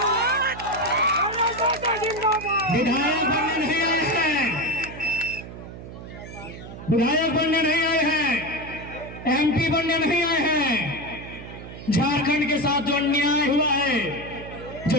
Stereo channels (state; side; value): noise; right; hum, 13 dB below the sound